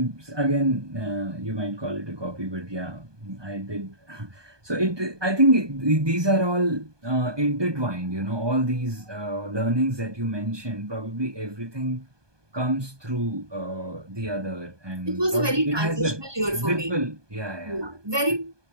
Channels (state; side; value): late; left; 1.2 ms